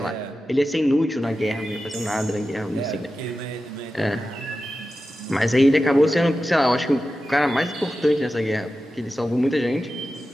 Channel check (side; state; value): both; normal; correlation 0.93